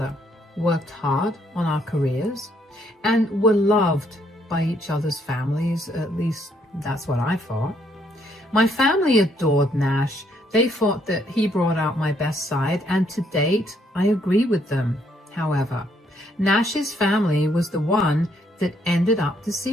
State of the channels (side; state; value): both; normal; correlation 0.70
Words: worked hard on our careers, and were loved by each other's families. At least that's what I thought. My family adored Nash. They thought that he brought out my best side, and to date, I agree with them. However, Nash's family was the one that ended up